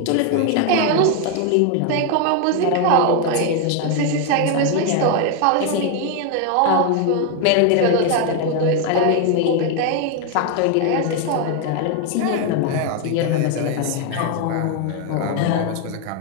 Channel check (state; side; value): different; both; correlation 0.01